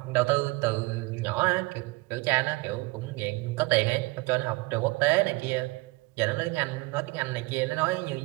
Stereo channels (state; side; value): quieter; left; 24.1 dB